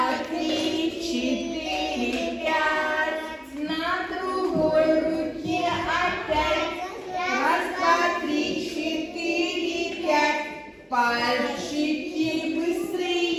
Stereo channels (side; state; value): both; identical; correlation 1.00